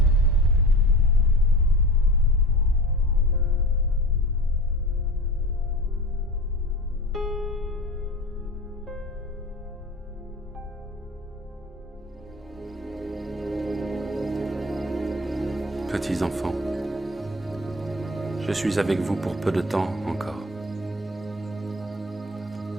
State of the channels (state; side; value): normal; both; correlation 0.36